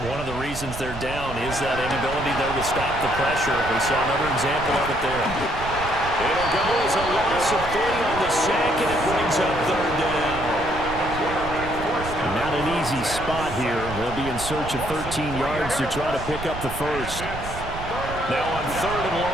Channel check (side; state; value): right; noise; rumble, 9 dB below the sound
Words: One of the reasons they're down is that inability, though, to stop the pressure. We saw another example of it there. It'll go as a loss of 3 on the sack, and it brings up third down. Not an easy spot here. They'll be in search of 13 yards to try to pick up the first. Now on 3rd and